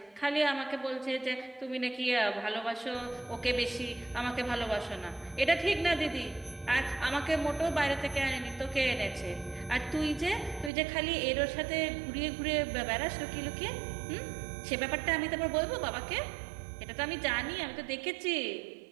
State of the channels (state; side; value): drops out; left; at 10.7 s